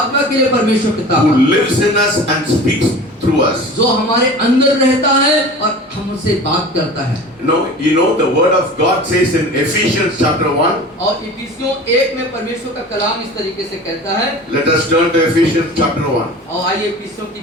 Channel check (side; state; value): both; normal; correlation 0.38